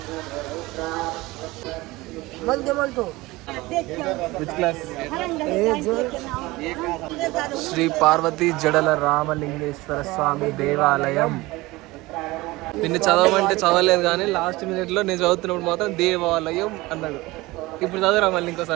శ్రీ పార్వతీ జడల రామలింగేశ్వర స్వామి దేవాలయం. నిన్ను చదవమంటే చదవలేదు కానీ లాస్ట్ మినిట్లో నేను చదువుతున్నప్పుడు మాత్రం దేవాలయం అన్నాడు. ఇప్పుడు చదువురా మళ్ళీ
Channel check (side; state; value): left; quieter; 20.6 dB